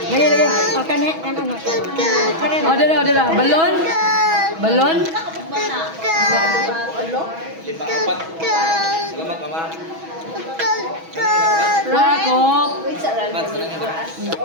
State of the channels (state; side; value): late; left; 6.2 ms